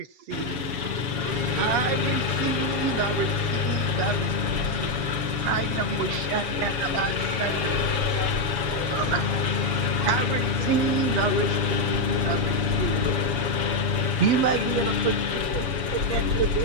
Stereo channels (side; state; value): left; late; 7.0 ms